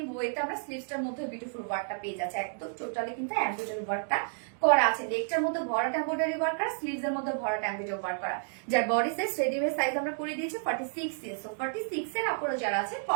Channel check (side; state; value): left; silent; digital silence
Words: ওয়েতে আমরা স্লিভসটার মধ্যে বিউটিফুল ওয়ার্কটা পেয়ে যাচ্ছি। একদম টোটালি কিন্তু এমব্রয়ডারি ওয়ার্কটা করা আছে। লেগটার মধ্যে ভরাট এমব্রয়ডারি ওয়ার্ক করা, স্লিভস এর মধ্যে ভরাট এমব্রয়ডারি ওয়ার্ক করা। যার বডি সাইজ রেডিমেড সাইজ আমরা করে দিয়েছি 46 ইঞ্চ। সো 46 এর আপুরা যারা আছে